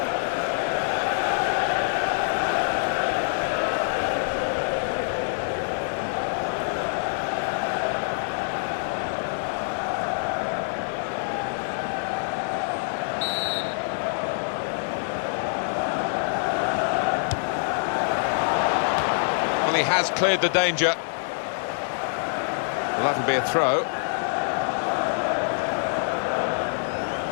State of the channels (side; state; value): right; silent; digital silence